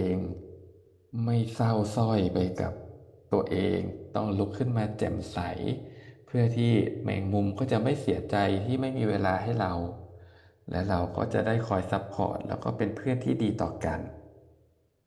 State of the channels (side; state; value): both; identical; correlation 1.00